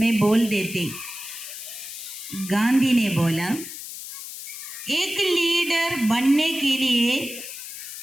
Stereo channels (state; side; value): noise; left; hiss, 10 dB below the sound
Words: बोल देते। गांधी ने बोला, एक लीडर बनने के लिए